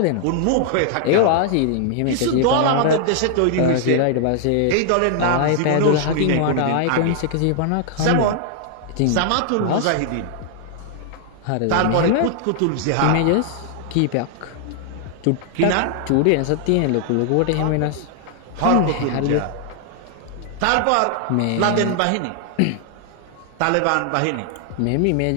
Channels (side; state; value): both; different; correlation 0.00